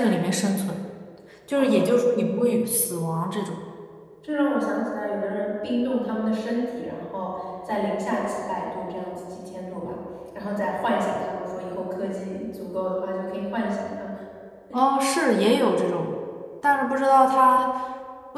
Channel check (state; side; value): identical; both; correlation 1.00